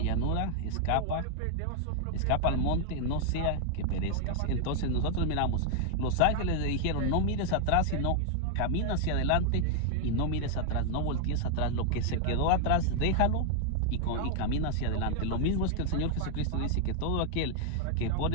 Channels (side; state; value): both; different; correlation 0.00